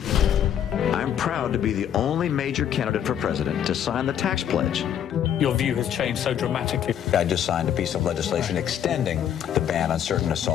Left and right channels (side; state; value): right; quieter; 9.5 dB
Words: I'm proud to be the only major candidate for president to sign the tax pledge. Your view has changed so dramatically. I just signed a piece of legislation extending the ban on certain